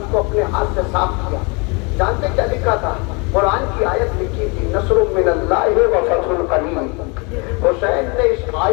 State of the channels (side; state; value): right; quieter; 30.8 dB